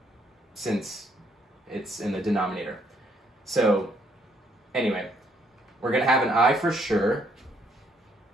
since it's in the denominator. So anyway, we're going to have an I for sure,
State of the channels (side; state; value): both; normal; correlation 0.69